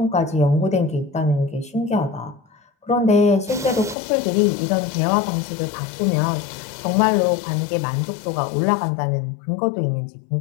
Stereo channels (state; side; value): drops out; right; at 4.0 s